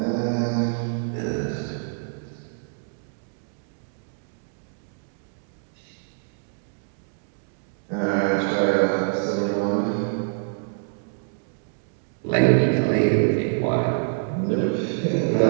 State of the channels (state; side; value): silent; left; digital silence